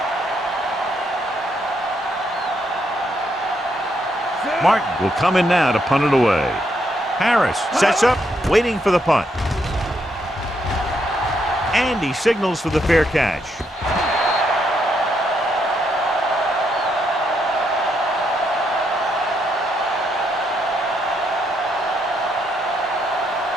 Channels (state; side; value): normal; both; correlation 0.77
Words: Martin will come in now to punt it away. Harris sets up, waiting for the punt. And he signals for the fair catch.